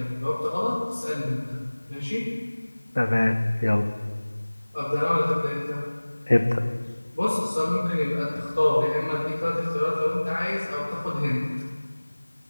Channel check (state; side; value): inverted; both; correlation -1.00